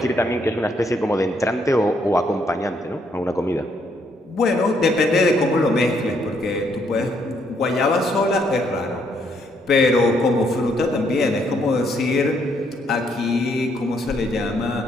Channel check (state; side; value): normal; both; correlation 0.72